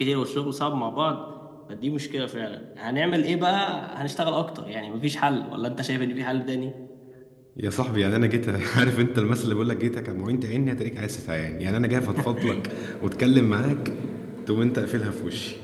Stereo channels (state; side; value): identical; both; correlation 1.00